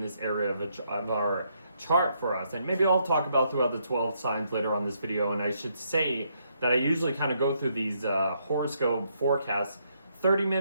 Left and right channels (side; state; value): both; inverted; correlation -0.75